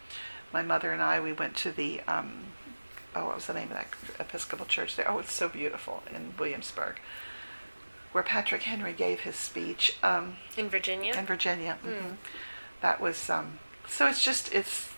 My mother and I, we went to the what was the name of that Episcopal church there? Oh, it's so beautiful in Williamsburg, where Patrick Henry gave his speech. In Virginia. In Virginia. Mm-hmm. That was so. It's just it's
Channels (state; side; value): inverted; both; correlation -1.00